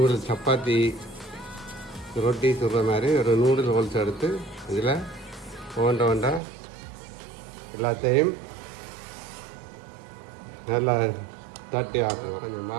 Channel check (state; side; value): drops out; left; at 6.4 s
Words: சப்பாத்தி ரொட்டி சுடுற மாதிரி ஒரு நூடுல் ஹோல்ஸ் எடுத்து இதில் ஒண்டா எல்லாத்தையும் நல்லா தட்டி ஆக்குங்க. கொஞ்சம்